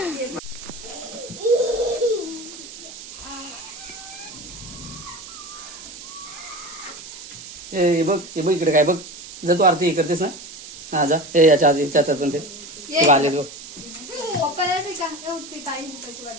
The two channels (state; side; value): noise; right; hiss, 14 dB below the sound